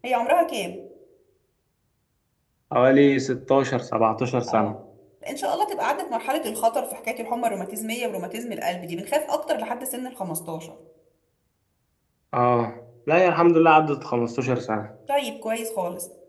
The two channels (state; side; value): identical; both; correlation 1.00